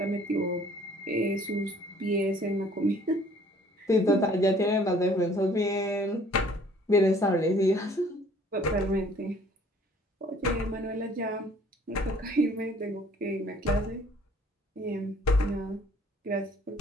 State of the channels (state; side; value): normal; both; correlation 0.56